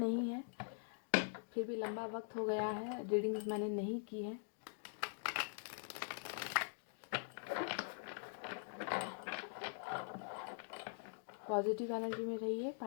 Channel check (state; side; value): silent; right; digital silence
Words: है, फिर भी लंबा वक्त हो गया है, रीडिंग्स मैंने नहीं की है। पॉजिटिव एनर्जी में रहिए।